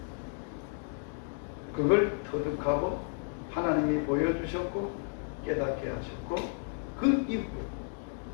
그걸 터득하고 하나님이 보여주셨고 깨닫게 하셨고 그 이후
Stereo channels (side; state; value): right; silent; 56 dB below the other